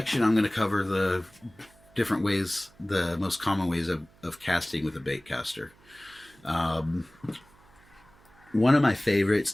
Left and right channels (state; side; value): noise; right; hum, 28 dB below the sound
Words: I'm going to cover the different ways, the most common ways of casting with a baitcaster. Um, One of my favorites